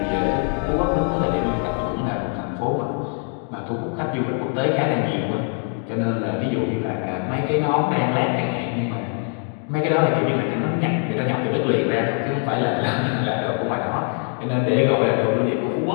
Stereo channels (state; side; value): quieter; right; 39.5 dB